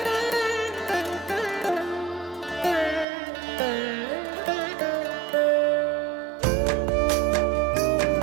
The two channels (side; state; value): left; drops out; at 3.1 s